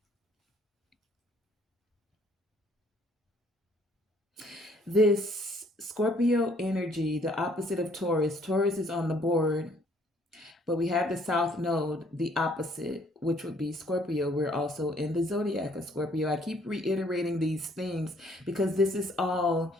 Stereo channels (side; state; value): both; normal; correlation 0.63